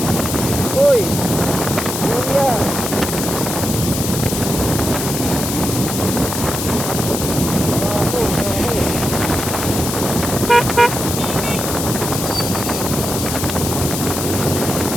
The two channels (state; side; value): noise; left; hiss, 4 dB below the sound